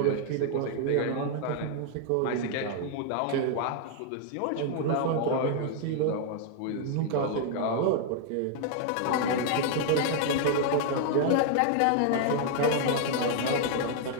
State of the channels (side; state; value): both; different; correlation 0.00